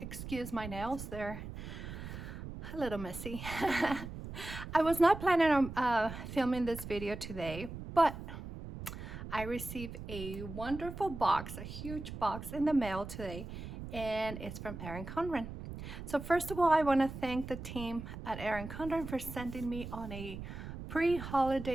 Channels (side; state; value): right; noise; rumble, 9 dB below the sound